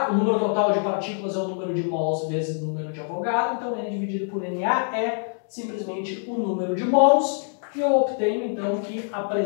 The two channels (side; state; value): right; silent; 60 dB below the other